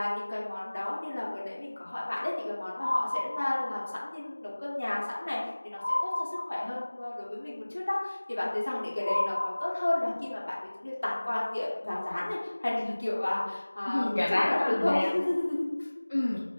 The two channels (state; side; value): inverted; both; correlation -1.00